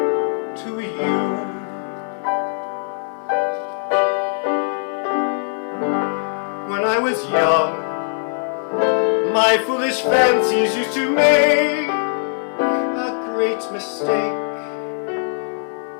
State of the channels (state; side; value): silent; right; digital silence